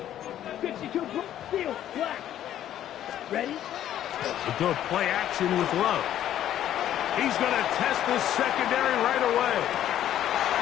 Ready? A good play action with Love. He's going to test this secondary right away.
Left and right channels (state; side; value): quieter; right; 11.5 dB